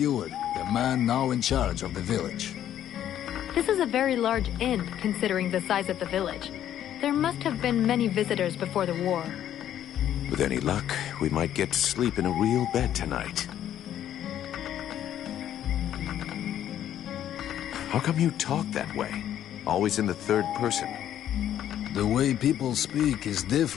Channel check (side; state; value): right; quieter; 11.0 dB